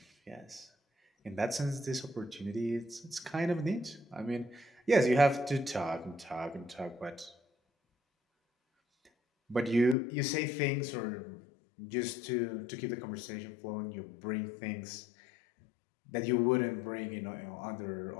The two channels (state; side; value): drops out; right; at 10.0 s